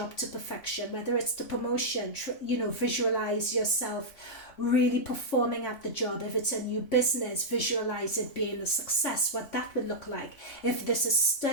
to perfection, whether it's the promotion, visualize yourself really performing at the job. If it's a new business, visualize it being a success, what that would look like. If this is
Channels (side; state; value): right; late; 3.2 ms